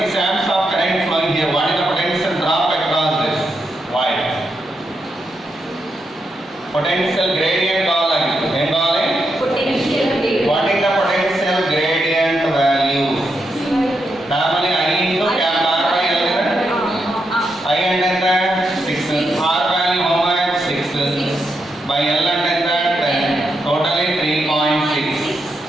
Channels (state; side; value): normal; both; correlation 0.83